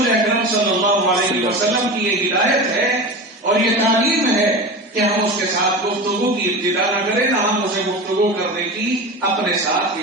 اکرم صلی اللہ علیہ وسلم کی یہ ہدایت ہے اور یہ تعلیم ہے کہ ہم اس کے ساتھ گفتگو کی ابتدا نہ کریں، نہ ہم اسے گفتگو کرنے کی اپنے ساتھ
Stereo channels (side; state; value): both; normal; correlation 0.28